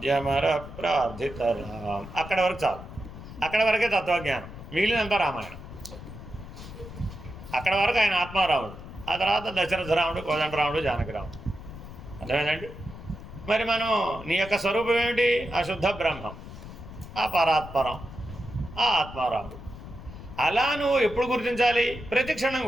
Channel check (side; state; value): left; noise; rumble, 13 dB below the sound